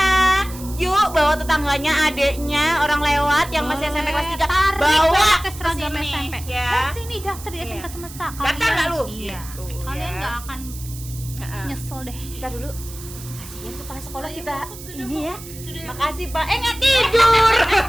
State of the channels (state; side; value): noise; right; hiss, 15 dB below the sound